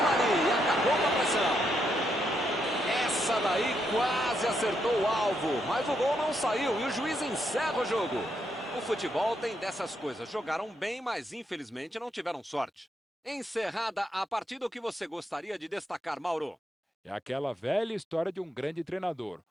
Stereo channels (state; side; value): normal; both; correlation 0.79